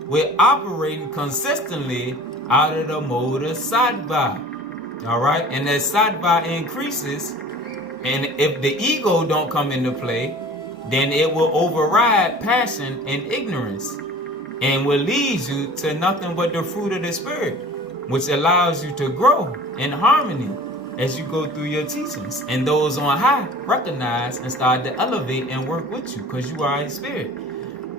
with operating consistently out of the mode of sattva. Alright? And as sattva increases, and if the ego don't come into play, then it will override passion and ignorance, and will lead you to nothing but the fruit of the spirit, which allows you to grow in harmony as you go through your teachings. And those on high recognize and start to elevate and work with you, because you are a spirit.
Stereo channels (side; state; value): both; normal; correlation 0.44